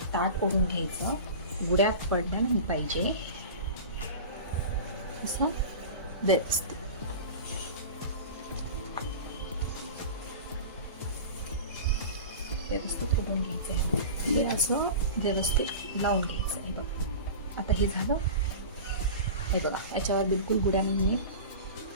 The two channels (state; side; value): inverted; both; correlation -0.33